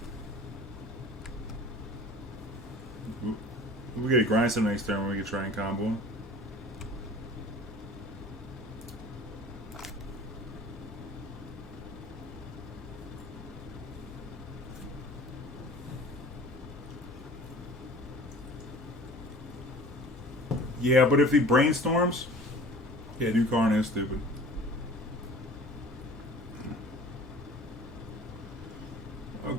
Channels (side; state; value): both; normal; correlation 0.43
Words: We get a Grindstone next turn when we can try and combo. Yeah, but if he brainstorms, yeah, new Karn is stupid.